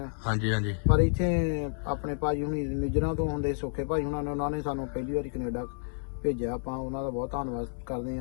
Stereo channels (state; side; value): silent; right; 58 dB below the other